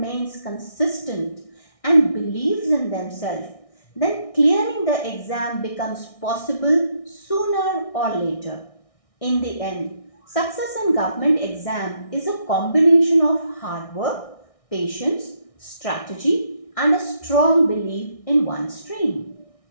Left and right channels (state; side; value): late; right; 1.6 ms